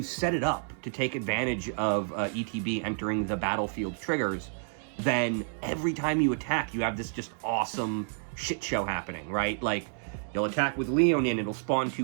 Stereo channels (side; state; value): left; silent; digital silence